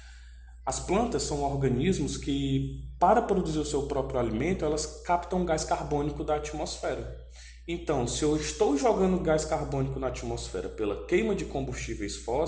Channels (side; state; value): both; identical; correlation 1.00